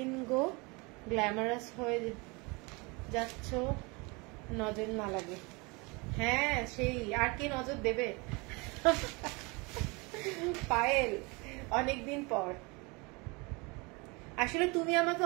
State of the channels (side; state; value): left; quieter; 27.7 dB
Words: গো গ্ল্যামারাস হয়ে যাচ্ছ, নজর না লাগে। হ্যাঁ সেই, আর কে নজর দেবে পায়েল, অনেকদিন পর। আসলে তুমি আমাকে